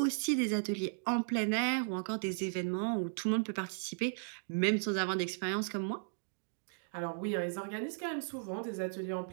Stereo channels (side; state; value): left; silent; digital silence